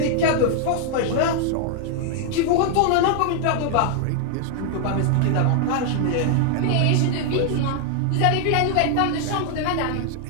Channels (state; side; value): different; both; correlation 0.00